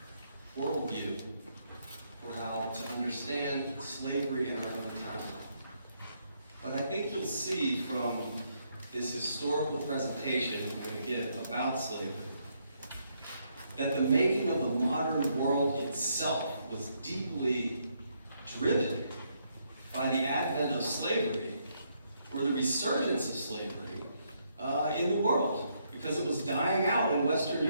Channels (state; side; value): inverted; both; correlation -0.75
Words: worldview for how to understand slavery in our own time. But I think you'll see from this historical presentation I'm going to give about slavery that the making of the modern world itself was deeply driven by the advent of slavery, or the resurgence of slavery in the world, because it was dying out in Western